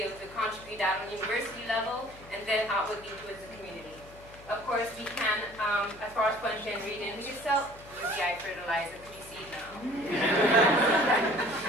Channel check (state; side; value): noise; left; hum, 21 dB below the sound